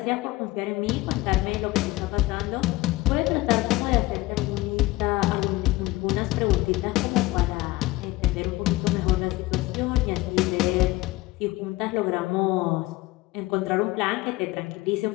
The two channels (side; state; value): right; quieter; 19.2 dB